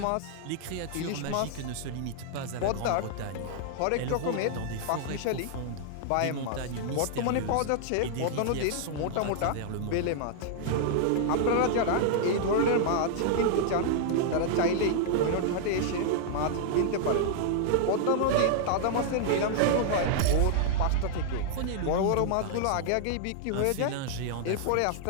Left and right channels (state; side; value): different; both; correlation -0.01